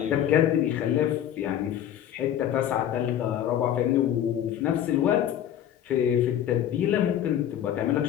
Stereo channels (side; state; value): right; quieter; 10.7 dB